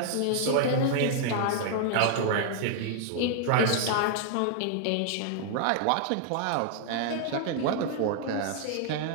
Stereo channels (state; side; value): different; both; correlation -0.01